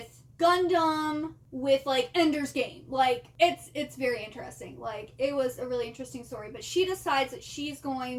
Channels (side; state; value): both; identical; correlation 1.00